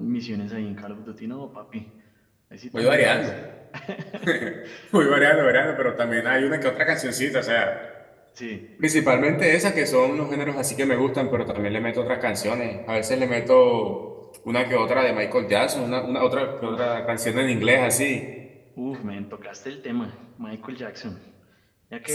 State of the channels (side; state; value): both; identical; correlation 1.00